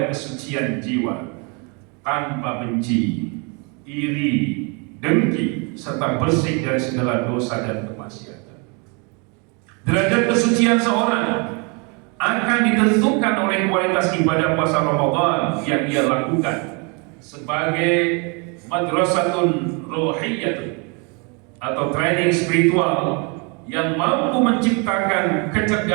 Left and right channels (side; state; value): left; quieter; 32.9 dB